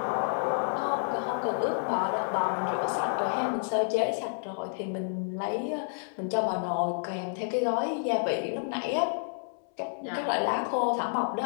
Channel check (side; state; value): right; silent; digital silence